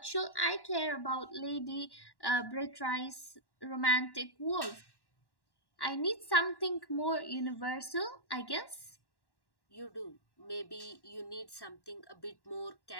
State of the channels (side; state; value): right; late; 1.1 ms